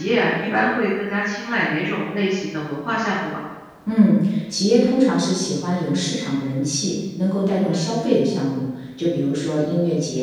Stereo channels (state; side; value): identical; both; correlation 1.00